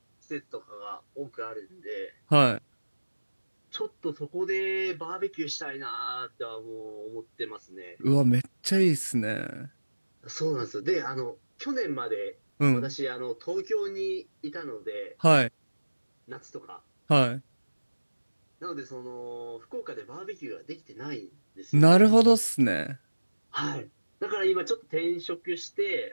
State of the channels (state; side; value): inverted; both; correlation -1.00